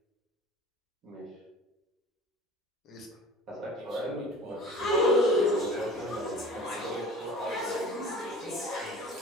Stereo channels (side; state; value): both; normal; correlation 0.41